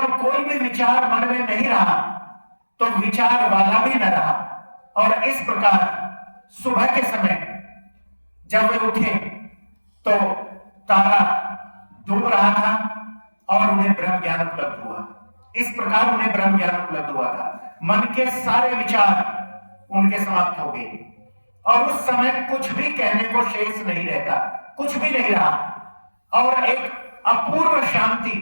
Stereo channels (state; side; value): inverted; both; correlation -1.00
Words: कोई भी विचार मन में नहीं रहा तो विचार वाला भी न रहा। और इस प्रकार सुबह के समय जब वे उठे तो तारा डूब रहा था और उन्हें ब्रह्म ज्ञान उपलब्ध हुआ। इस प्रकार उन्हें ब्रह्म ज्ञान उपलब्ध हुआ था। मन के सारे विचार उनके समाप्त हो गए और उस समय कुछ भी कहने को शेष नहीं रहता, कुछ भी नहीं रहा, और एक अपूर्व